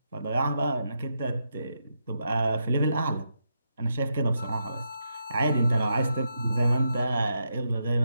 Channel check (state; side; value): inverted; both; correlation -0.83